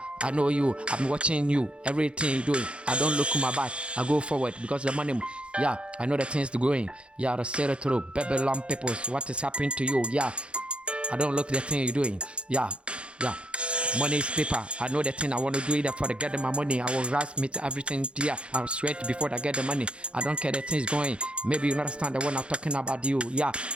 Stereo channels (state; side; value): late; left; 0.058 ms